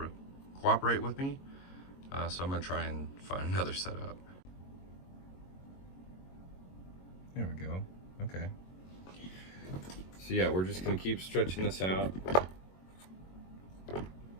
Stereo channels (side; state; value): right; late; 22 ms